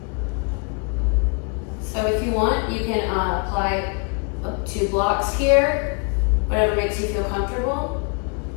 So if you want, you can apply up 2 blocks here, whatever makes you feel comfortable.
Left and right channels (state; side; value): quieter; right; 36.3 dB